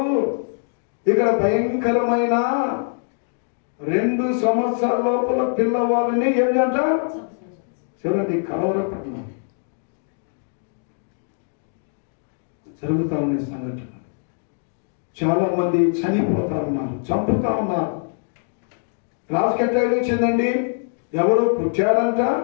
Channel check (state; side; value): silent; right; digital silence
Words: ఇక్కడ భయంకరమైన 2 సంవత్సరాల లోపల పిల్లవాళ్ళని ఏంటంట చూడండి, కలవరపట్నం జరుగుతా ఉన్నాయి సంఘటన. చాలా మంది చనిపోతా ఉన్నారు, చంపుతా ఉన్నారు. రాజుకి ఎట్లా వచ్చిందండి, ఎవరు పుట్టాడంట,